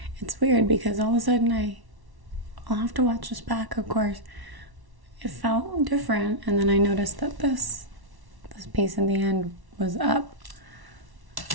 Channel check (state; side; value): late; left; 1.1 ms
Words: It's weird because all of a sudden I'll have to watch this back, of course. It felt different, and then I noticed that this piece in the end was up.